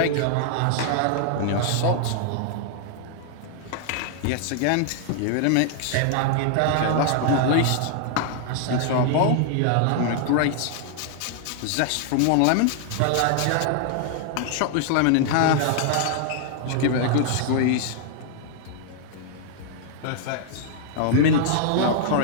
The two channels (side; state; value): both; different; correlation 0.00